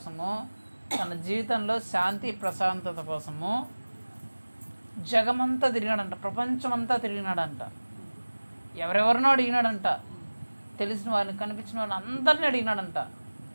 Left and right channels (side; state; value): both; inverted; correlation -1.00